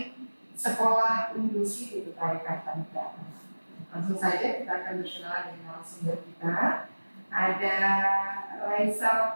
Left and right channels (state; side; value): inverted; both; correlation -1.00